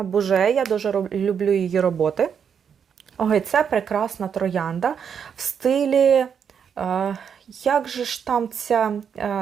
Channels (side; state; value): left; quieter; 7.4 dB